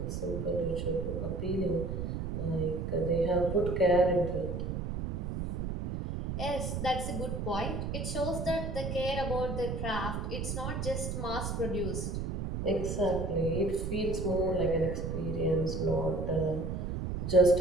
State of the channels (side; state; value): right; noise; rumble, 3 dB below the sound